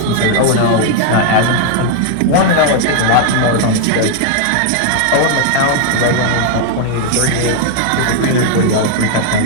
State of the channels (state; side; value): different; both; correlation 0.00